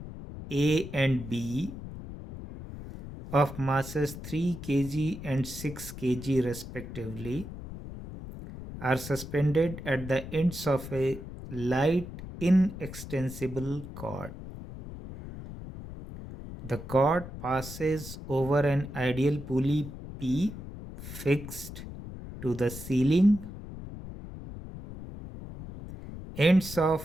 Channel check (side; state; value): left; noise; rumble, 11 dB below the sound